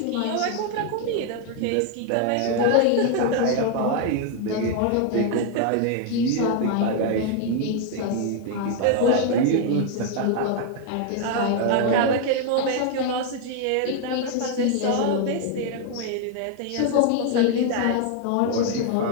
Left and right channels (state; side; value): different; both; correlation 0.00